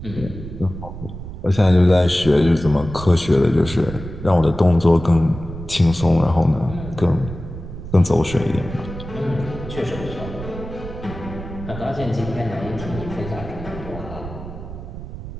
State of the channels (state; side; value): noise; right; rumble, 11 dB below the sound